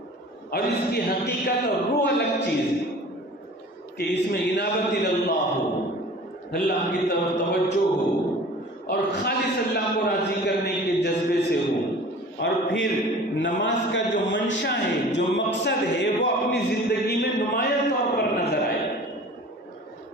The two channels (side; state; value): both; normal; correlation 0.43